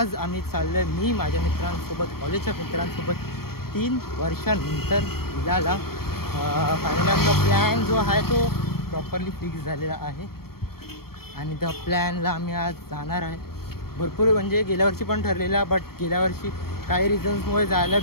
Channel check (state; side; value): late; right; 0.94 ms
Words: आम्ही चाललो आहे मी माझ्या मित्रांसोबत, कॉलेजच्या मित्रांसोबत 3 वर्षानंतर विलाला. फायनली आमचा प्लॅन जो आहे तो प्रॉपरली फिक्स झालेला आहे आणि त्या प्लॅनला आम्ही आज जाणार आहे. भरपूर म्हणजे गेल्या वर्षी पण ठरलेला, बट गेल्या वर्षी काही रिझन्समुळे जायला